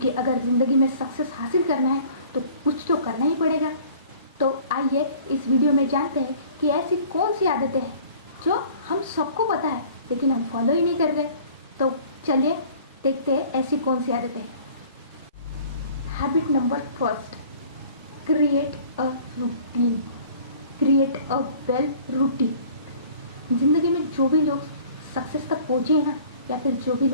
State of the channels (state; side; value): inverted; both; correlation -0.50